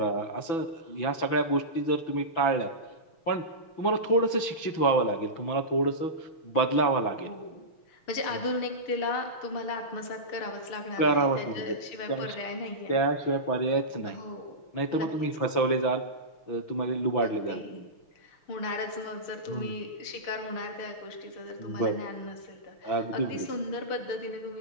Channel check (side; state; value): right; late; 6.0 ms